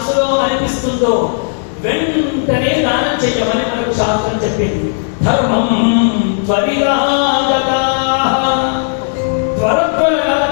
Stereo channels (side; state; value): right; silent; digital silence